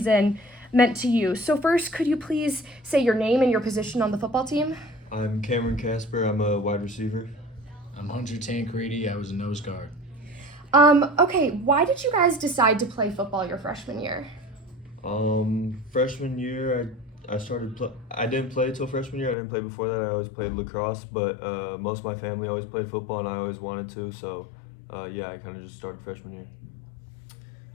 meant to you. So first, could you please say your name and your position on the football team? I'm Cameron Casper. I'm a wide receiver. I'm Hunter Tancredi. I was a nose guard. Okay, why did you guys decide to play football your freshman year? Freshman year, I didn't play till freshman year. I didn't play before that. I always played lacrosse, but most of my family always played football, and I always wanted to. So, I kind of just started freshman year.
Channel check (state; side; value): drops out; right; at 19.4 s